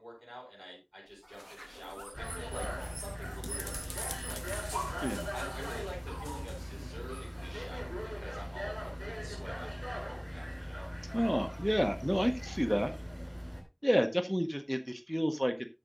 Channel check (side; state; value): both; identical; correlation 1.00